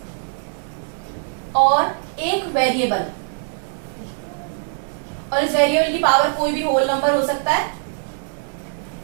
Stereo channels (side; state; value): left; silent; digital silence